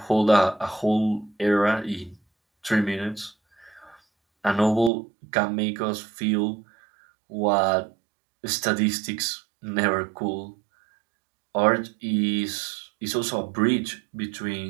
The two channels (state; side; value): drops out; left; at 4.9 s